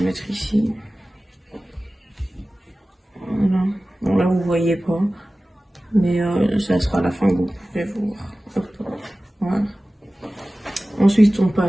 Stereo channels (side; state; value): both; normal; correlation 0.97